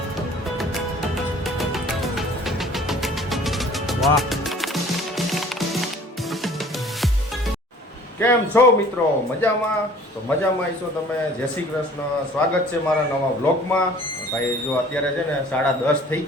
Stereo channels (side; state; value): both; normal; correlation 0.50